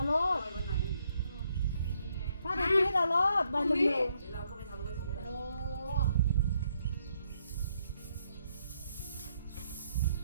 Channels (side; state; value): both; inverted; correlation -0.74